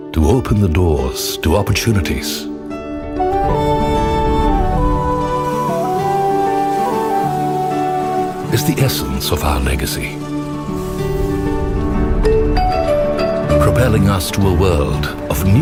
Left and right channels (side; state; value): both; identical; correlation 1.00